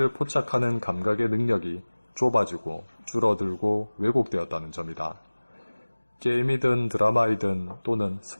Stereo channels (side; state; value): both; inverted; correlation -1.00